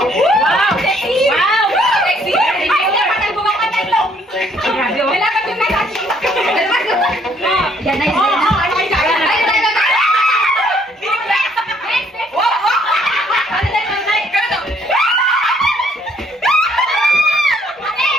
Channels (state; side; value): normal; both; correlation 0.65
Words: Wow! Sexy! Ay, dapat ang bumang ka tayo! Wala ka yung message! Yan na Oo, oo, ano kayo sa'yo? Ay, ay, ay, ay! Wow, wow! Ano na yung night? Ganito! Next!